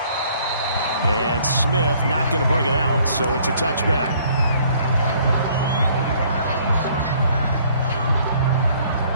And Smith not going to bring it out, so it's a touchback.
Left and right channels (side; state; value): both; inverted; correlation -0.60